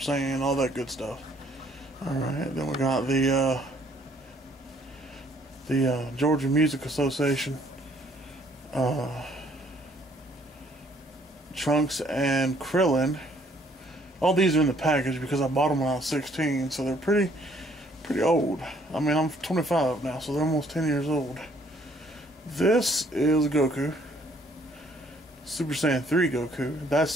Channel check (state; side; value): normal; both; correlation 0.63